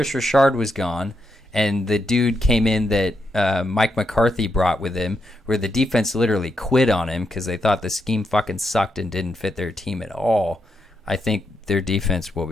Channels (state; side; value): normal; both; correlation 0.82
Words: Richard was gone and the dude came in that Mike McCarthy brought with him, where the defense literally quit on him because they thought the scheme fucking sucked and didn't fit their team at all, I think their defense will